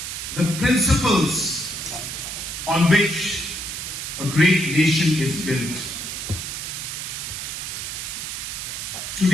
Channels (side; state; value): right; noise; hiss, 5 dB below the sound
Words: the principles on which a great nation is built.